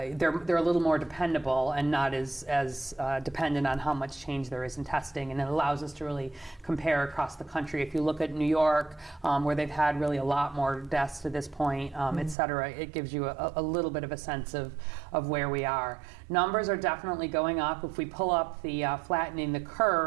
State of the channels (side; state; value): left; drops out; at 12.4 s